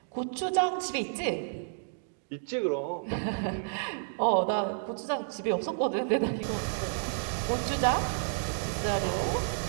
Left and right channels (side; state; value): left; silent; digital silence